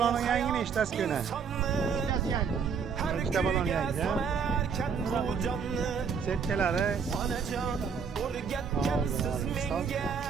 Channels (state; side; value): quieter; left; 6.2 dB